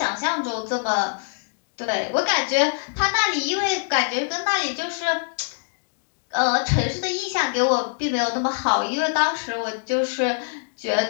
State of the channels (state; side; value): silent; right; digital silence